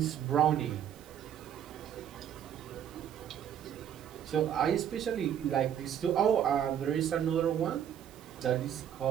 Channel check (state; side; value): quieter; left; 9.5 dB